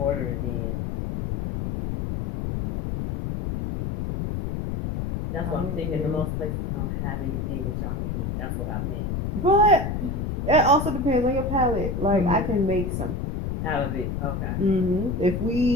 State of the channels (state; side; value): noise; left; rumble, 2 dB below the sound